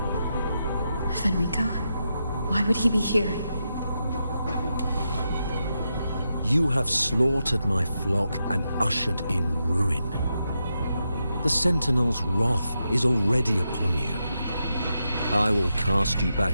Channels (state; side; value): inverted; both; correlation -0.86